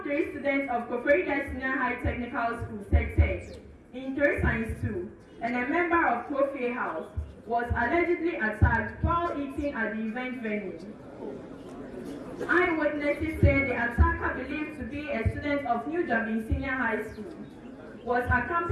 3 student of Koforidua Senior High Technical School, SECTECH, in 3 Science 2, and a member of Kofi House, was allegedly attacked while eating at the event venue. Eyewitnesses say the attacker, believed to be a student of New Dublin Senior High School, was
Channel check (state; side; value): identical; both; correlation 1.00